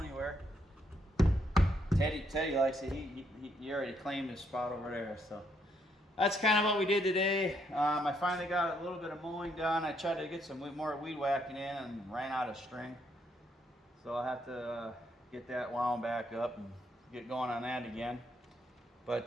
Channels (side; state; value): both; normal; correlation 0.74